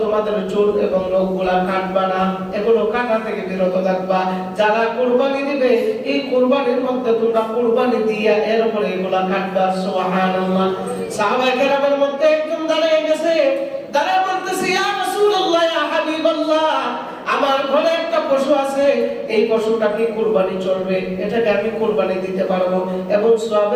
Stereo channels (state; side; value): identical; both; correlation 1.00